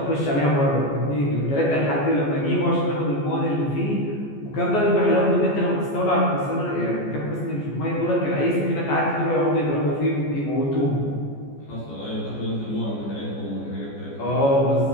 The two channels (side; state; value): right; late; 14 ms